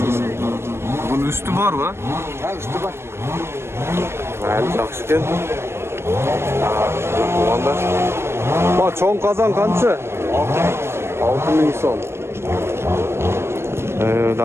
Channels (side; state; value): left; late; 0.12 ms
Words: Bunun üstü var mı? Ha, üstü var. Mayli, yaxshi ekan. Tuğanlar. Bu cho'ng qozon qancha? 6000 so'm.